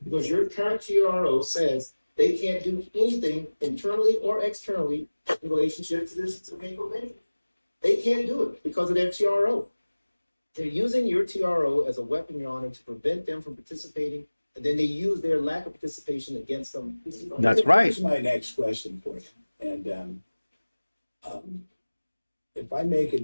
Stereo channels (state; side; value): inverted; both; correlation -1.00